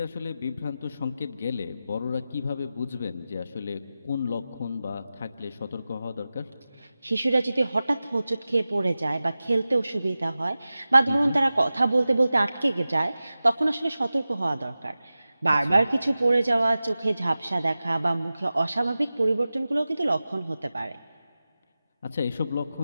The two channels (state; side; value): inverted; both; correlation -0.95